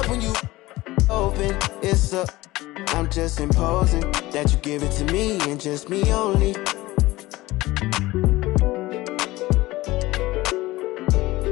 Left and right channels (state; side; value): quieter; right; 18.8 dB